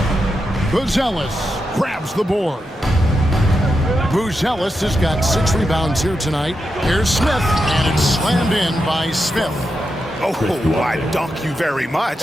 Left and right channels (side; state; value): both; normal; correlation 0.87